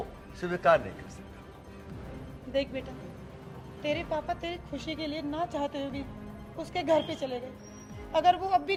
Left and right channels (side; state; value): both; identical; correlation 1.00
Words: स्वीकार नहीं कर सकता। देख बेटा, तेरे पापा तेरी खुशी के लिए ना चाहते हुए भी उसके घर पे चले गए। अगर वो अब भी